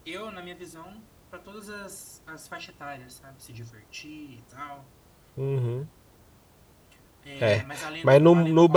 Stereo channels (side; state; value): both; identical; correlation 1.00